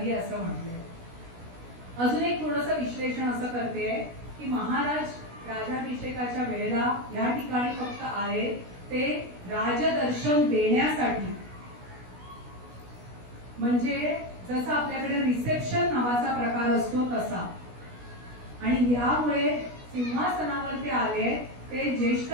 असं म्हटलंय. अजून एक थोडंसं विश्लेषण असं करते की महाराज राजाभिषेकाच्या वेळेला या ठिकाणी फक्त आले ते राजदर्शन देण्यासाठी. म्हणजे जसं आपल्याकडे रिसेप्शन नावाचा प्रकार असतो तसा. आणि यामुळे सिंहासनावर ते आले ते ज्येष्ठ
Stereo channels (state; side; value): late; left; 16 ms